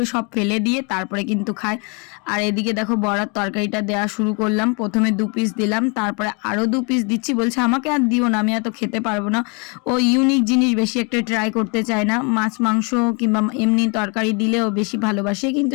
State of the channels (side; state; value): right; quieter; 33.4 dB